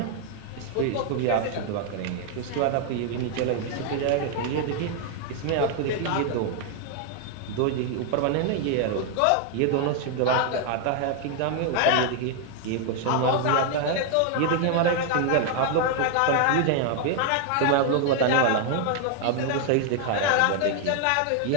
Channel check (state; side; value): different; both; correlation 0.00